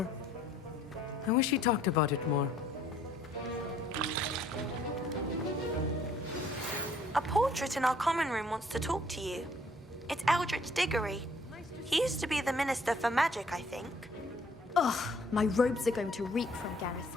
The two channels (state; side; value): normal; both; correlation 0.61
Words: I wish he talked about it more. A portrait in our common room wants to talk to you. It's Eldritch Diggory. He used to be the Minister for Magic, I think. Ugh, my robes are going to reek from Gareth's